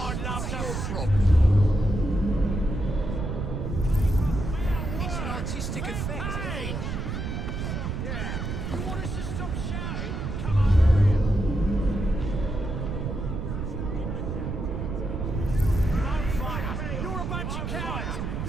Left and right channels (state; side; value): noise; right; rumble, 3 dB below the sound